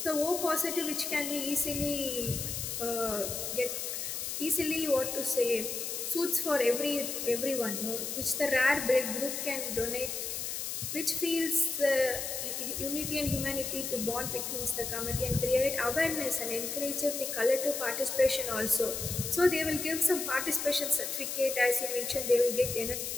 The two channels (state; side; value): noise; left; hiss, 4 dB below the sound